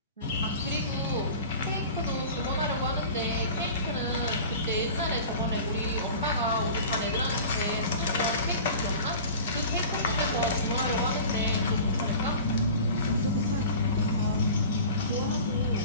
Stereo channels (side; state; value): both; inverted; correlation -0.39